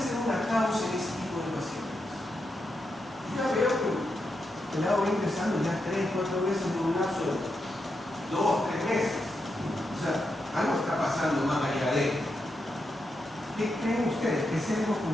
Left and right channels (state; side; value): normal; both; correlation 0.85